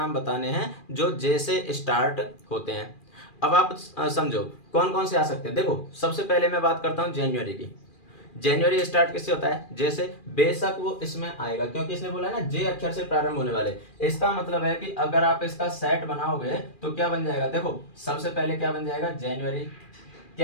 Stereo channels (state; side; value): late; right; 2.4 ms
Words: बताने हैं जो जे से स्टार्ट होते हैं। अब आप समझो कौन कौन से आ सकते हैं। देखो, सबसे पहले मैं बात करता हूं जनवरी की। जनवरी स्टार्ट किससे होता है, जे से। बेशक वो इसमें आएगा क्योंकि इसने बोला है ना जे अक्षर से प्रारंभ होने वाले। इसका मतलब है कि अगर आप इसका सेट बनाओगे तो क्या बन जाएगा। देखो, सबसे पहले क्या बन जाएगा, जनवरी।